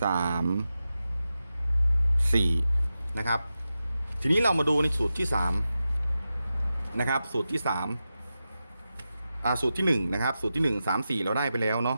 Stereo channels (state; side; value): inverted; both; correlation -0.91